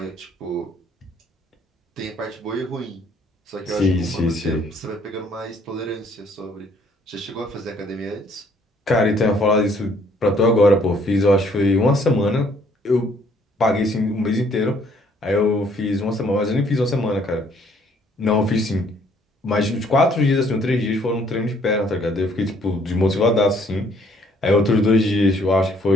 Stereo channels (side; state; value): both; normal; correlation 0.63